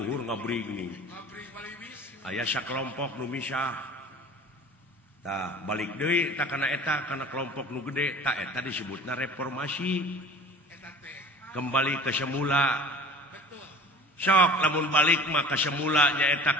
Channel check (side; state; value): both; normal; correlation 0.42